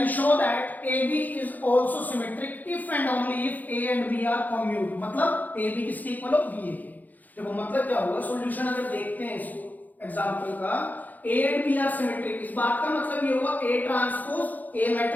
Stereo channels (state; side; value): late; right; 0.082 ms